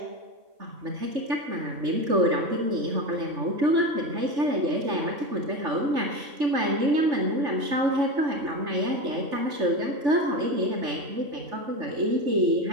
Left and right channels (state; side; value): late; left; 3.6 ms